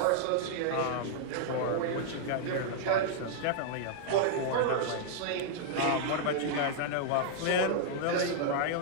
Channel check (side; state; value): both; different; correlation -0.01